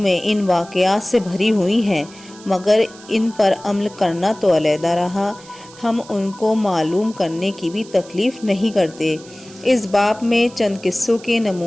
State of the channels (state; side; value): noise; right; hiss, 21 dB below the sound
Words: ان واقعات سے بھری ہوئی ہیں، مگر ان پر عمل کرنا تو علیحدہ رہا۔ ہم ان کو معلوم کرنے کی بھی تکلیف نہیں کرتے۔ اس باب میں چند قصوں کے